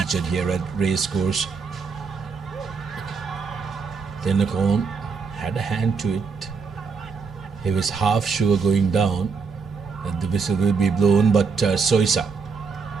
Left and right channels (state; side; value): quieter; left; 5.1 dB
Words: here at Racecourse. Tenakone had a hand to it. He was half sure going down that the whistle will be blown, but Soisa.